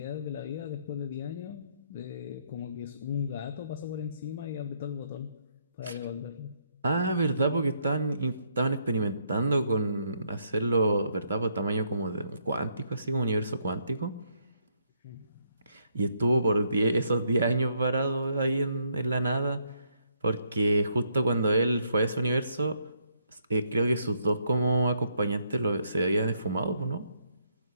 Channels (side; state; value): both; inverted; correlation -0.73